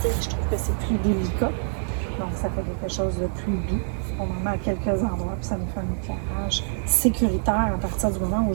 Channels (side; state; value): left; silent; digital silence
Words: Je trouve que c'est plus délicat. Donc, ça fait quelque chose de plus doux. On en met à quelques endroits, puis ça nous fait un éclairage sécuritaire à partir du moment où